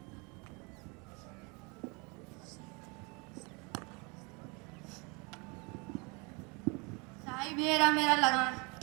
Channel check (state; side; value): quieter; left; 30.2 dB